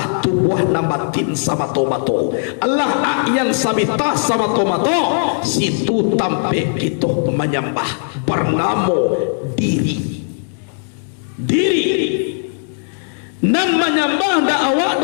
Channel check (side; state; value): right; silent; digital silence